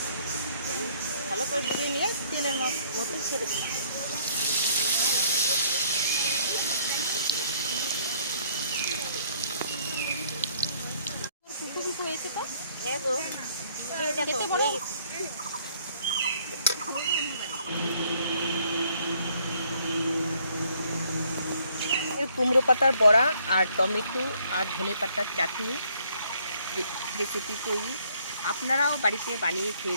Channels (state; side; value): inverted; both; correlation -0.64